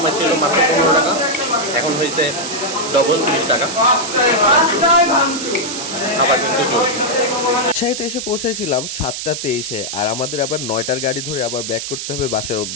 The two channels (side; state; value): right; noise; hiss, 6 dB below the sound